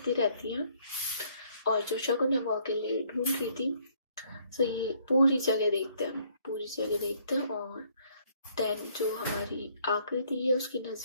ही रहती है और जो शगुन है वो अकेले ढूंढ रही थी। तो ये पूरी जगह देखते हैं और देन जो हमारी आकृति है उसकी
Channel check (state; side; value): inverted; both; correlation -0.65